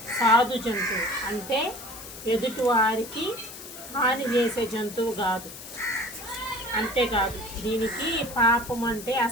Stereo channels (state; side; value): noise; left; hiss, 13 dB below the sound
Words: సాధు జంతువు. అంటే ఎదుటి వారికి హాని చేసే జంతువు కాదు. అంతేకాదు, దీనికి పాపం అంటే